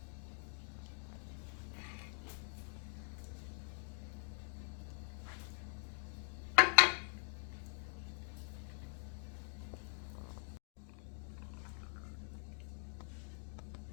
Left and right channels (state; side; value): silent; right; digital silence